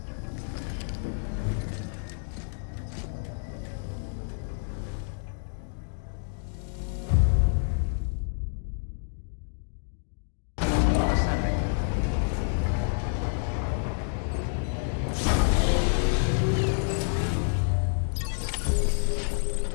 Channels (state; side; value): silent; right; digital silence